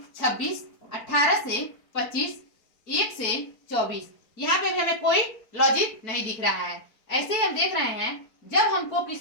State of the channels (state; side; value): late; right; 4.5 ms